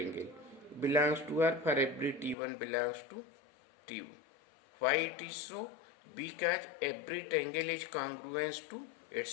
belongs to R for every T1 belongs to T2. Why it is so? Because every triangle is congruent to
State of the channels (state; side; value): drops out; right; at 2.4 s